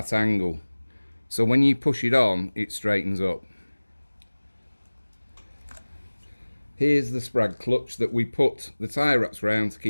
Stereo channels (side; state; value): both; inverted; correlation -1.00